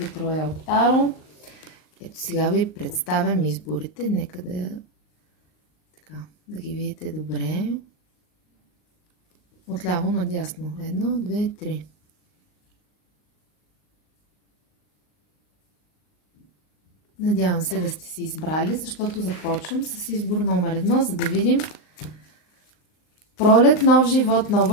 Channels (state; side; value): late; right; 38 ms